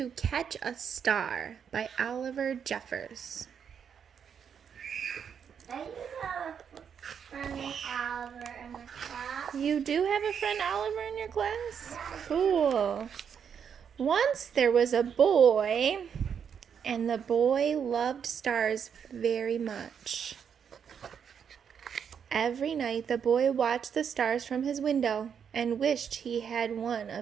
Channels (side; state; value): left; quieter; 7.5 dB